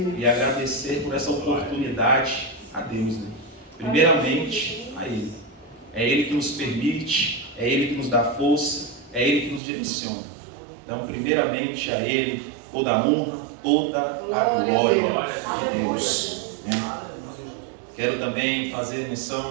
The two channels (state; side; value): drops out; left; at 9.6 s